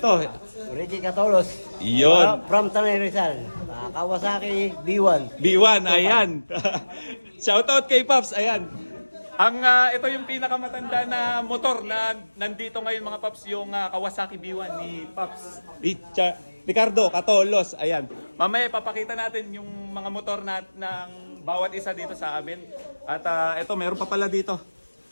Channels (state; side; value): inverted; both; correlation -1.00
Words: Ricky Catolos. Yun. From Tanay Rizal. Kawasaki B1. B1. Ayan. Shoutout kay Paps. Ayan. Ito yung pinakamatanda na motor na nandito ngayon mga Paps, yung Kawasaki B1 ni Paps Ricardo Catolos. Ayan. Mamaya papakita natin yung mga motor ng bawat isa dito sa amin. At ito, meron pa pala dito.